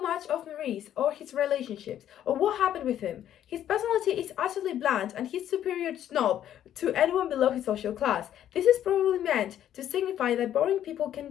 much of Maurice or his relationships or what happened with him. His personality is utterly bland and he's superior snob to anyone below his social class. This is probably meant to signify that boring people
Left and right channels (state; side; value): quieter; right; 11.0 dB